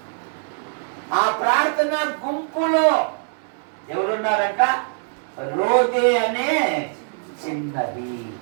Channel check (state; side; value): silent; left; 64 dB below the other